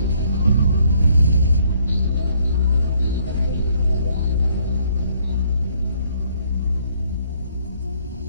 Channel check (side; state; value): both; inverted; correlation -0.66